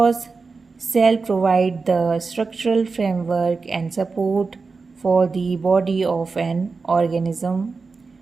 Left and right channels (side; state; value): left; quieter; 4.4 dB